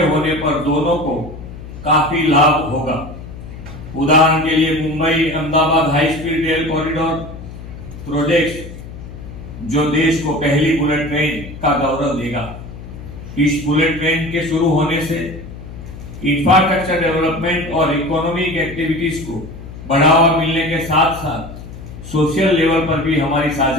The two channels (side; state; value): left; noise; hum, 13 dB below the sound